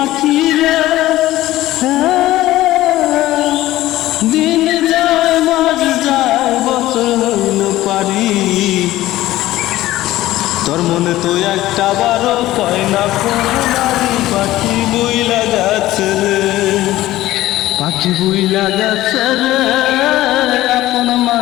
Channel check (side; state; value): right; quieter; 15.8 dB